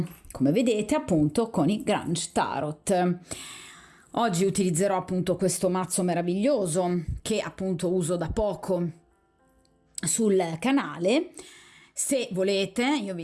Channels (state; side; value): identical; both; correlation 1.00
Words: come vedete appunto con i Grange Tarot. Oggi utilizzerò appunto questo mazzo meraviglioso che appunto uso da poco sul canale. Se volete io vi